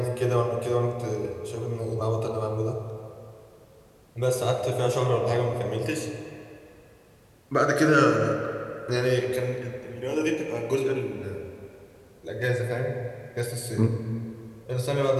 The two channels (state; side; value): identical; both; correlation 1.00